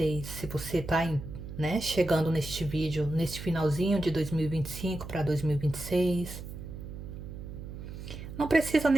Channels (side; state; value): right; noise; hum, 10 dB below the sound